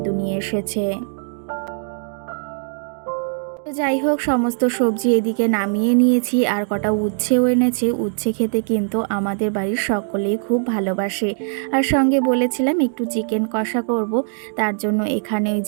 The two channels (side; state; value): left; silent; digital silence